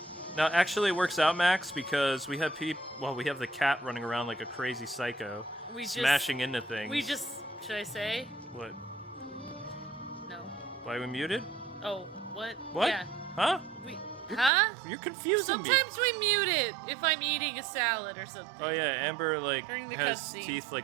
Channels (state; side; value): drops out; left; at 14.5 s